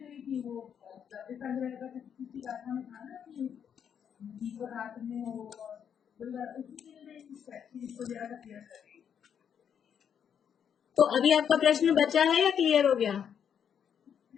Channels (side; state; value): right; quieter; 8.1 dB